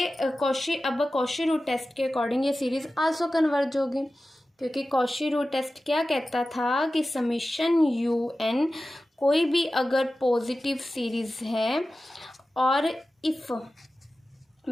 कॉशी रूट टेस्ट के अकॉर्डिंग ये सीरीज़ आल्सो कन्वर्ज होगी, क्योंकि कॉशी रूट टेस्ट क्या कहता था कि समीशन UN कोई भी अगर पॉजिटिव सीरीज़ है और इफ़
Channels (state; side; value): normal; both; correlation 0.95